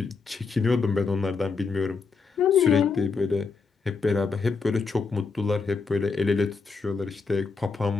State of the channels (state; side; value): quieter; right; 4.7 dB